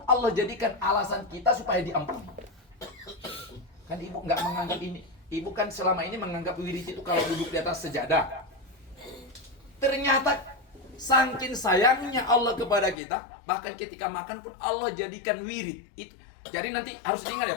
Allah jadikan alasan kita supaya diampuni. Kan ibu nggak menganggap ini. Ibu kan selama ini menganggap wirid itu kalau duduk di atas sejadah. Ternyata saking sayangnya Allah kepada kita, bahkan ketika makan pun Allah jadikan wirid itu. Jadi nanti harus diingat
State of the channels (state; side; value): drops out; right; at 13.0 s